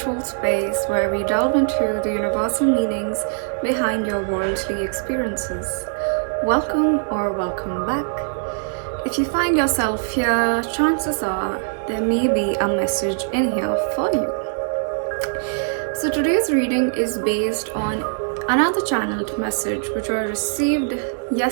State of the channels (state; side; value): silent; left; digital silence